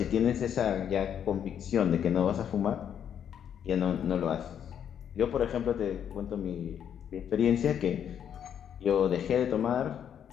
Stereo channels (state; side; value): quieter; right; 8.9 dB